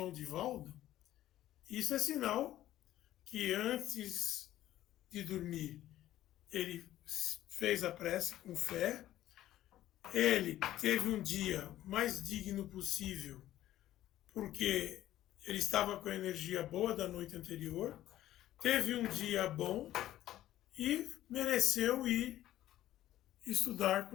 Divaldo, isso é sinal que antes de dormir ele fez a prece com fé, ele teve um dia mais digno possível, porque ele estava com a energia boa da noite anterior, teve um dia bom e mereceu ir estudar com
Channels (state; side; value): quieter; right; 13.7 dB